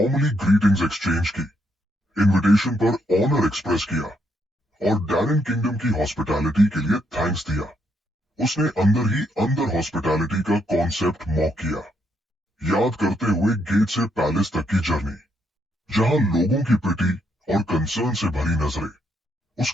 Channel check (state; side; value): normal; both; correlation 0.76